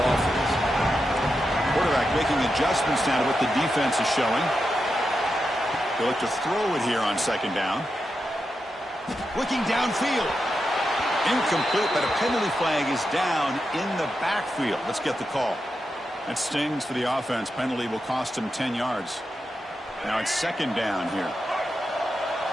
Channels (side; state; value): both; normal; correlation 0.88